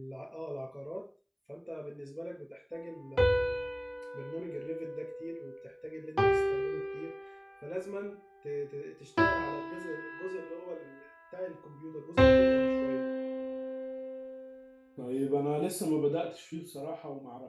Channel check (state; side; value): identical; both; correlation 1.00